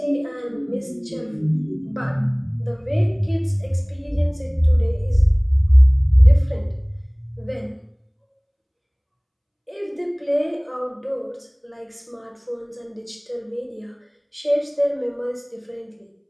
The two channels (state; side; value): identical; both; correlation 1.00